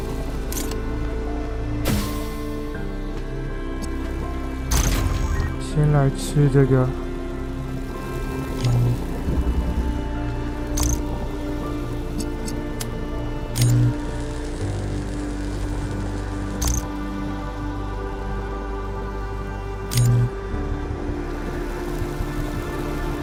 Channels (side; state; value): both; identical; correlation 1.00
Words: 先来吃这个。